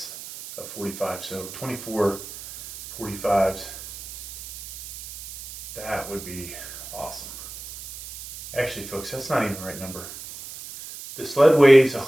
of 45, so 24 45s. That would be awesome. Actually, folks, that's not even the right number. The sled weighs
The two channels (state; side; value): noise; right; hiss, 12 dB below the sound